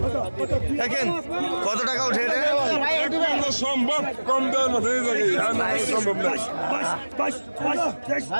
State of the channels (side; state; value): both; inverted; correlation -1.00